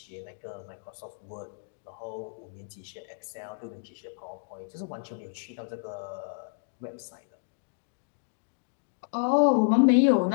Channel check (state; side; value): silent; right; digital silence